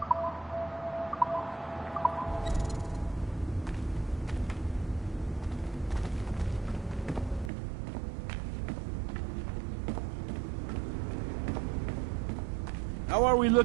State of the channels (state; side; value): drops out; left; at 7.5 s